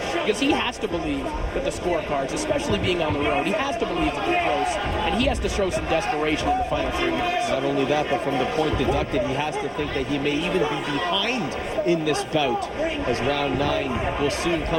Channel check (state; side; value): identical; both; correlation 1.00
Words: Because he has to believe that the scorecards, especially being on the road, he has to believe that they're close, and he has to show some desperation in the final 3 minutes. Not only that, but from the point deducted, he has to think that he may even be behind in this bout, as round 9 will soon